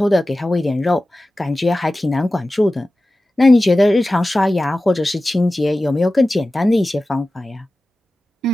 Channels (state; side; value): normal; both; correlation 0.95